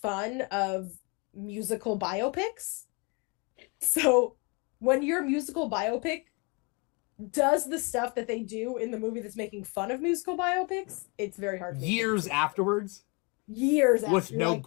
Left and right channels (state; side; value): quieter; right; 30.2 dB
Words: of musical biopics. So when your musical biopic does the stuff that they do in the movie that's making fun of musical biopics, it's very hard. Years afterwards? Years after. With no